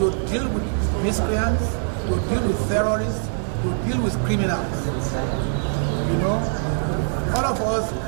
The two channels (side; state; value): left; silent; digital silence